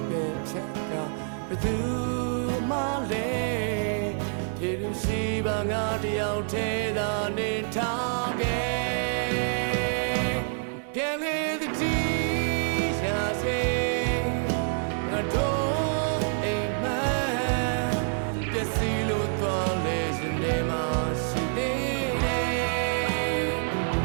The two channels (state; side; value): silent; left; digital silence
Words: ပဲဖြတ်ကဘယ်သူမှလည်းဖြေလို့ရှိပါငါတယောက်တည်းသာနေထားခဲ့ပြန်လေသတိရစေငါတို့အိမ်မက်ပျက်စီးလို့သွားလေရှင်နေမှာရှိသေးတယ်